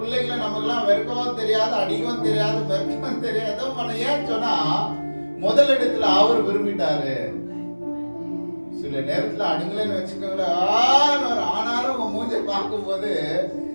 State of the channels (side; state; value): both; inverted; correlation -1.00